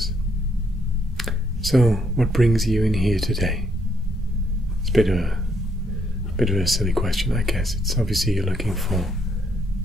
So, what brings you in here today? It's a bit of a silly question, I guess. It's obviously you're looking for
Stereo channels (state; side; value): normal; both; correlation 0.74